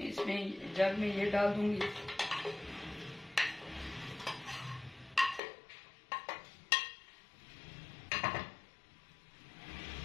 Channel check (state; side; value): drops out; right; at 5.4 s